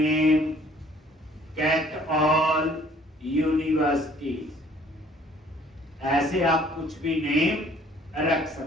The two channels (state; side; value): normal; both; correlation 0.57